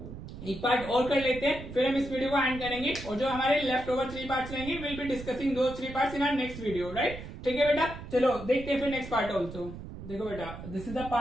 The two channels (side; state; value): right; noise; rumble, 11 dB below the sound